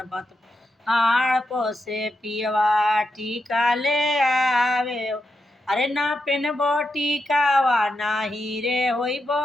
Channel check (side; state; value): both; normal; correlation 0.85